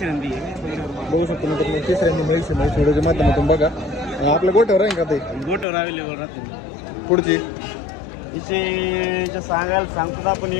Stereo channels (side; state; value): right; drops out; at 5.7 s